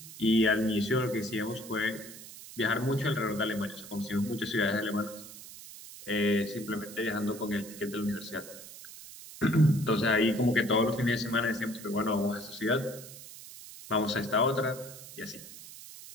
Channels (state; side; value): noise; right; hiss, 15 dB below the sound